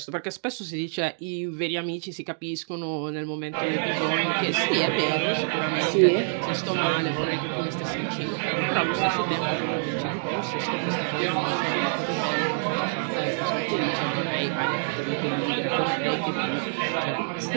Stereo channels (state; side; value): silent; left; digital silence